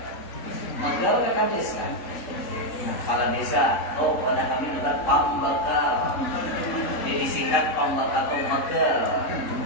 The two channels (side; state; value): right; late; 3.8 ms